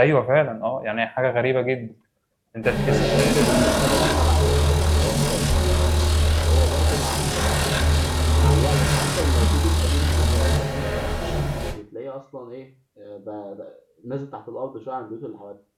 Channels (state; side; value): identical; both; correlation 1.00